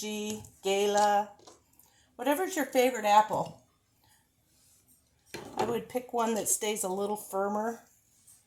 Gala, whatever's your favorite apple. I would pick one that stays a little firmer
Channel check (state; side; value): identical; both; correlation 1.00